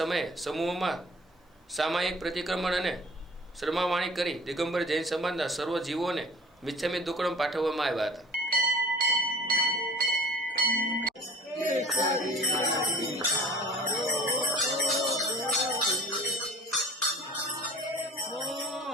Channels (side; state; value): both; normal; correlation 0.45